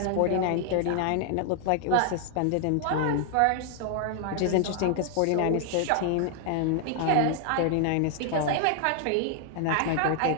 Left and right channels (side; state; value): both; different; correlation 0.00